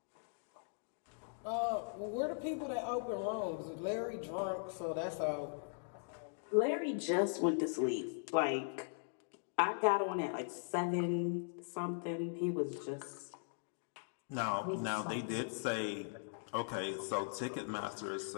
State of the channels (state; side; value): silent; right; digital silence